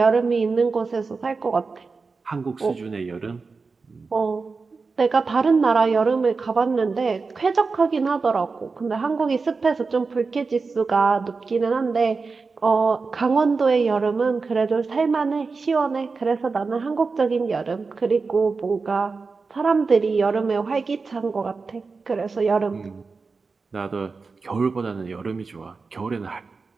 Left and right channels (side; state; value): left; quieter; 4.4 dB